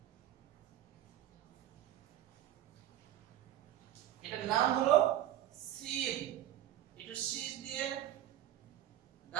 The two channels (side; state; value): left; quieter; 12.2 dB